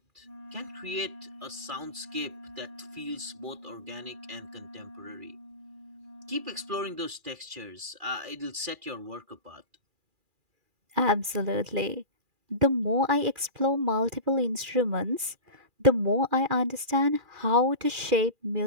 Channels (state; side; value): late; left; 2.4 ms